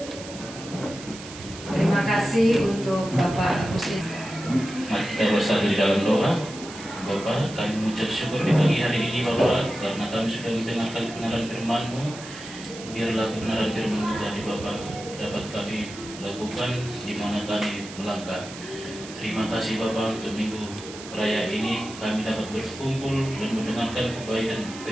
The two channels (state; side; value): noise; right; hiss, 14 dB below the sound